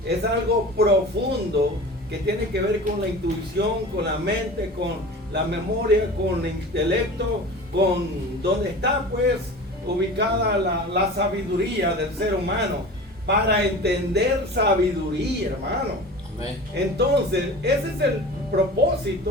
es algo profundo que tiene que ver con la intuición, con la mente, con la memoria, con el intelecto, con donde está pues ubicada la sabiduría del ser humano. Para entender sabiduría, hermano. Amén. Entonces, ese es el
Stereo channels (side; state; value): both; normal; correlation 0.36